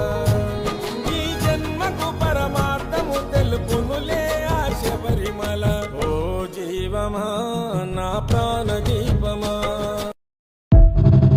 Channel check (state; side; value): identical; both; correlation 1.00